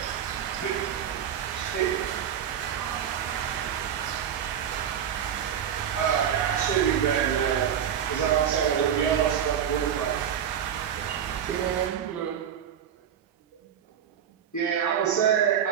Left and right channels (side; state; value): left; quieter; 8.9 dB